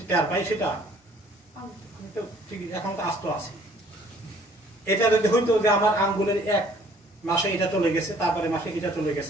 টের পাই সেটা? আমি তো ঠিক এখন তো আস্ত আছি। এটা যদি হইতো যে আমার আঙ্গুলের এক মাসে এটা চলে গেছে, তারপরে মাসে এটা চলে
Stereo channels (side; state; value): both; normal; correlation 0.58